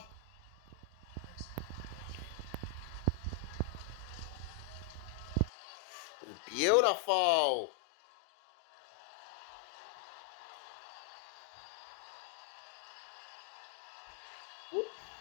It was beautiful.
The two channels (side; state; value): right; drops out; at 5.5 s